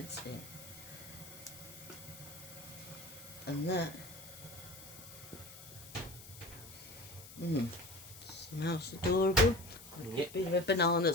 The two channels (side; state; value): left; noise; hiss, 16 dB below the sound